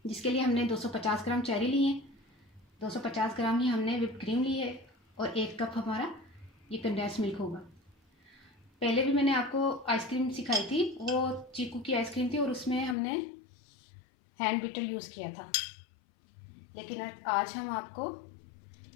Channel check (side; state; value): right; drops out; at 13.0 s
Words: जिसके लिए हमने 250 ग्राम चेरी ली है, 250 ग्राम ही हमने व्हिप क्रीम ली है और 1 कप हमारा ये कंडेंस मिल्क होगा। पहले भी मैंने आपको आइसक्रीम सिखाई थी, वो चीकू की आइसक्रीम थी और उसमें हमने हैंड बीटर यूज़ किया था। लेकिन आज हम आपको